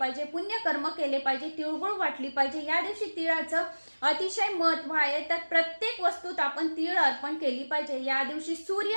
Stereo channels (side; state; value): both; inverted; correlation -1.00